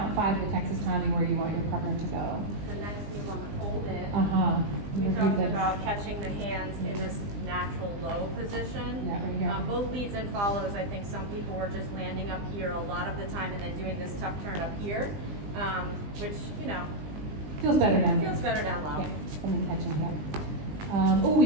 5 of the Texas Tommy where you want your partner to go. the next move on the fold in. Uh-huh. We Review talked this. about catching the hands in this natural low position. Yeah, right here. Both leads and follows, I think some people were just landing up here a lot of the time and then doing this tuck turn up here, which, you know, Feels better down here. feels better down low. Yeah, and then catching here.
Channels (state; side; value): late; left; 20 ms